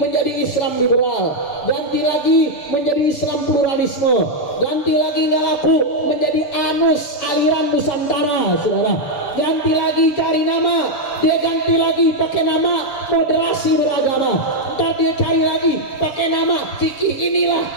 Islam liberal, ganti lagi menjadi Islam pluralisme, ganti lagi nggak laku menjadi anus aliran Nusantara, saudara. Ganti lagi cari nama, dia ganti lagi pakai nama moderasi beragama. Ntar dia cari lagi pakai nama fikih inilah,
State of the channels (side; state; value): right; late; 6.8 ms